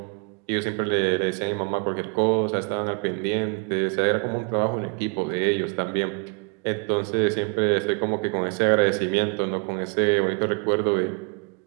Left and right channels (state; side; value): quieter; left; 35.2 dB